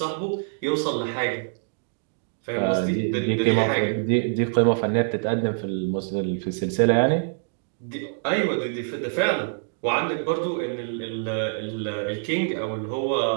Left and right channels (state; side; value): silent; left; digital silence